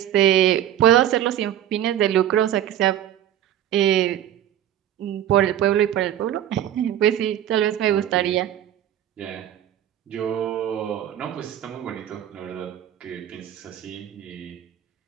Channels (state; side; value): quieter; left; 11.3 dB